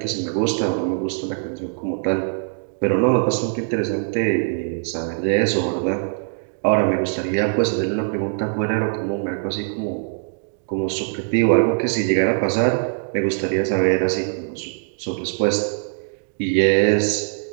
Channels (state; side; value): silent; left; digital silence